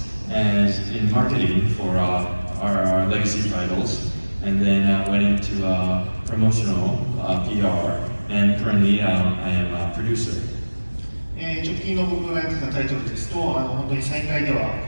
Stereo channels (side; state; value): both; inverted; correlation -1.00